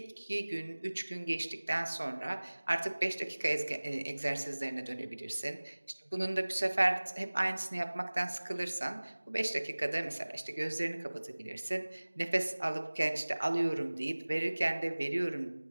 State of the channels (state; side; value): inverted; both; correlation -1.00